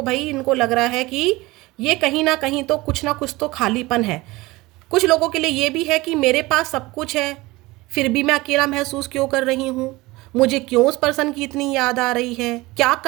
भाई इनको लग रहा है कि ये कहीं ना कहीं तो कुछ ना कुछ तो खालीपन है। कुछ लोगों के लिए ये भी है कि मेरे पास सब कुछ है फिर भी मैं अकेला महसूस क्यों कर रही हूँ, मुझे क्यों उस पर्सन की इतनी याद आ रही है, क्या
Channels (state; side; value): quieter; left; 21.0 dB